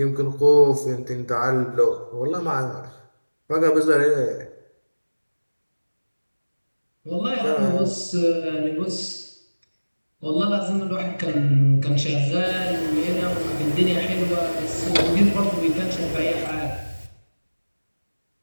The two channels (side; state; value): both; inverted; correlation -1.00